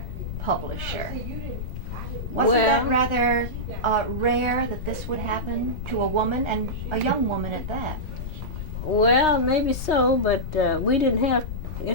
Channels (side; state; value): left; noise; rumble, 6 dB below the sound